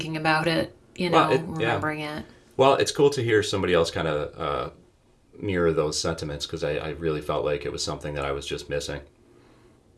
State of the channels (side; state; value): both; identical; correlation 1.00